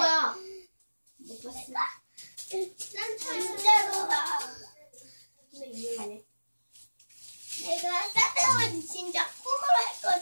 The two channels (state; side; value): inverted; both; correlation -1.00